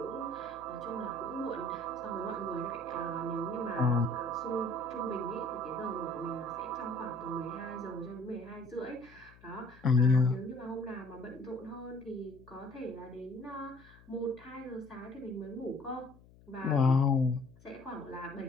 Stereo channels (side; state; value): left; noise; hum, 24 dB below the sound